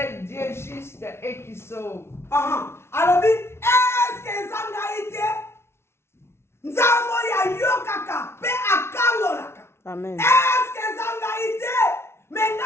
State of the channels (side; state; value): right; late; 0.12 ms